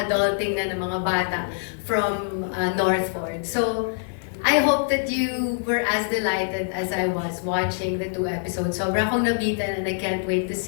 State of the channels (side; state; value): right; silent; digital silence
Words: na ng mga bata from Northford. So, I hope that you were as delighted as I was watching the 2 episodes. Sobra akong nabitan and I can't wait to